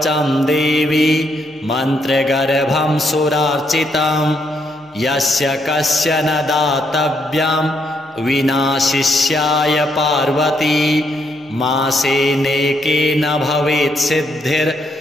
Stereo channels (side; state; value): both; normal; correlation 0.75